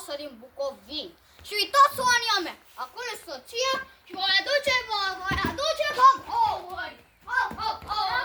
din Bucovini. Și uitați Ania mea, acolo e soția și vă aduce cam ouări.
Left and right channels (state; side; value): identical; both; correlation 1.00